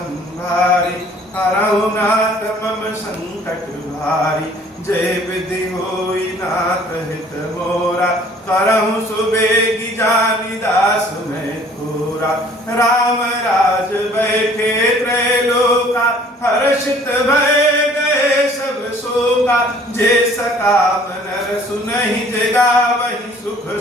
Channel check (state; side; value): normal; both; correlation 0.55